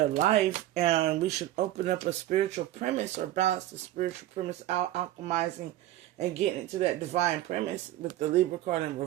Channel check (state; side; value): quieter; left; 14.0 dB